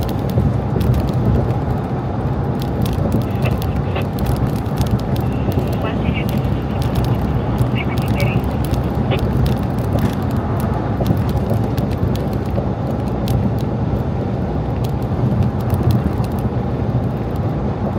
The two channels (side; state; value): both; identical; correlation 1.00